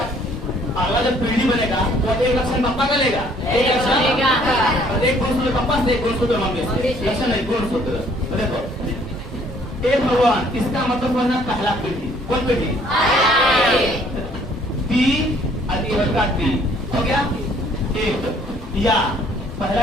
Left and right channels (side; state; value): both; normal; correlation 0.61